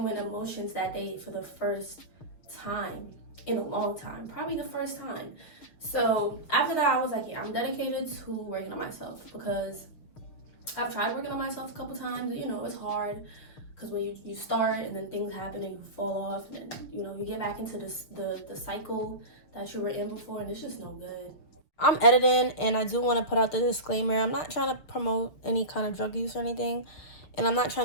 emotions that day for the first time in a long time, probably the first time. So after that, I was like, yeah, I'm dedicated to working on myself, because I've tried working on myself a couple times. You know, it's hard because when you start and then things happen and you fall off, and then, you know, you get back into the cycle that you were in before, and it's just no good. I'm editing, and I do want to put out the disclaimer. I'm not trying to promote any kind of drug use or anything, and I'm not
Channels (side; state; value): right; late; 6.7 ms